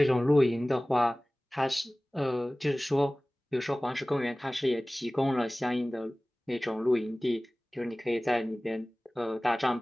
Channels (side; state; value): both; normal; correlation 0.98